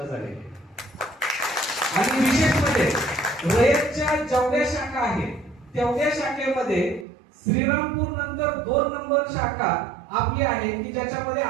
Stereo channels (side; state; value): left; drops out; at 7.1 s